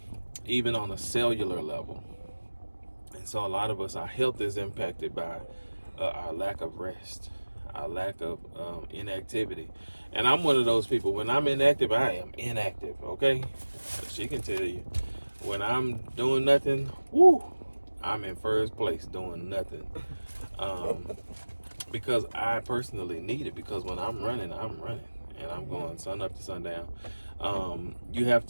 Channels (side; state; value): both; inverted; correlation -1.00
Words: even on a cellular level. And so a lot of us, our health is impacted by our lack of rest, our lack of inactivity. And I'm one of those people. When I'm inactive, I am inactive, okay? She can tell you. When I'm doing nothing, I'm in first place doing nothing. Because I personally need it, because when I'm running, and I'm going sun up to sundown. You have